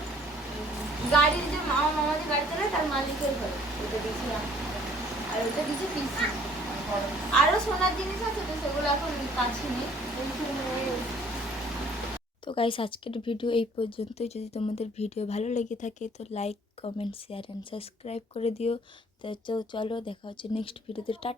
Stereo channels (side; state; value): both; normal; correlation 0.57